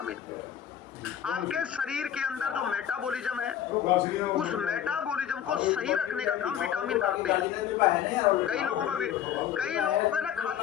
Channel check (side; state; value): right; quieter; 10.0 dB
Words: आपके शरीर के अंदर जो मेटाबॉलिज्म है उस मेटाबॉलिज्म को सही रखने का काम विटामिन करते हैं। कई लोगों का भी, कई लोग ना